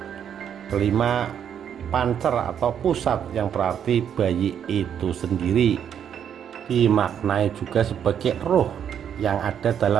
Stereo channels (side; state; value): left; quieter; 8.7 dB